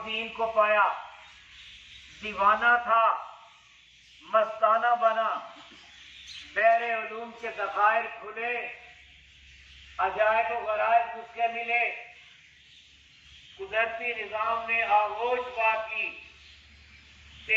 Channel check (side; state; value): both; identical; correlation 1.00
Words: کو پایا، دیوانہ تھا، مستانہ بنا، بحر علوم کے ذخائر کھلے، عجائب و غرائب اس کے ملے، قدرتی نظام نے آغوش پا کی،